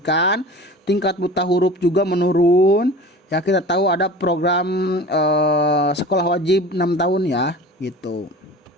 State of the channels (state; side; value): normal; both; correlation 0.38